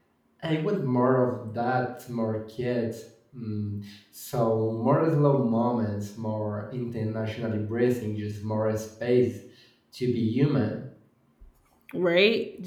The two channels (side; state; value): both; identical; correlation 1.00